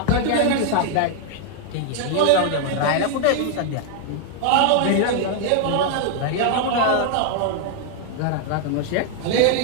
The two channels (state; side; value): different; both; correlation 0.00